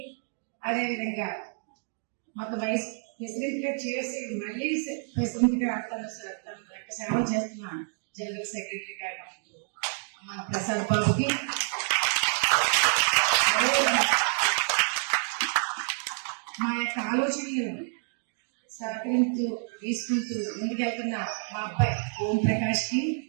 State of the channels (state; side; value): silent; left; 59 dB below the other